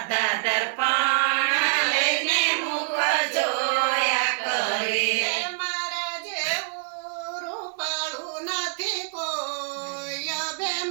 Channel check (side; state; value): left; silent; digital silence